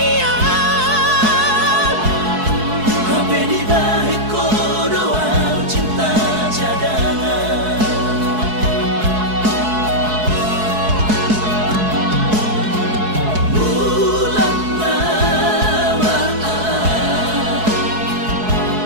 Habe di balik doa cinta cadangan. Bulan maaf,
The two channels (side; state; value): left; late; 4.7 ms